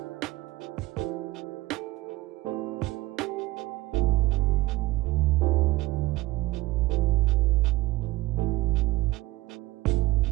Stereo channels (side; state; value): left; quieter; 19.1 dB